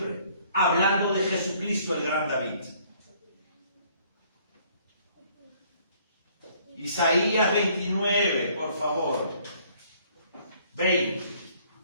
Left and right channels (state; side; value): inverted; both; correlation -0.61